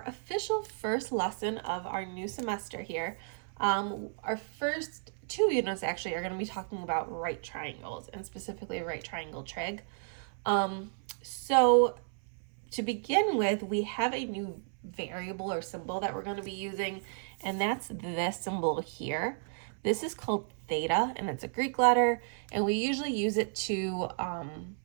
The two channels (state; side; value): silent; left; 56 dB below the other